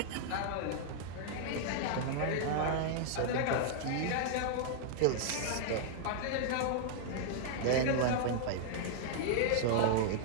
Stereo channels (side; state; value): both; different; correlation -0.01